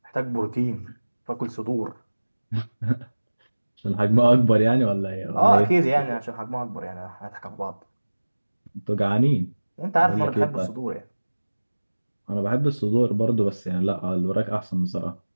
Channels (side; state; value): both; inverted; correlation -1.00